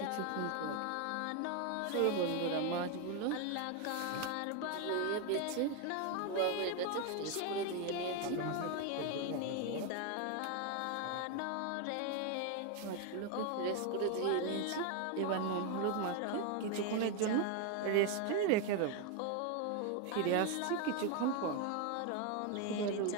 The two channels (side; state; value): both; different; correlation 0.01